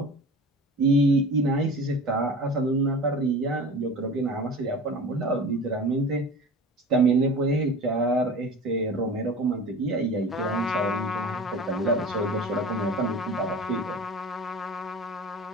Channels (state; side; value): normal; both; correlation 0.37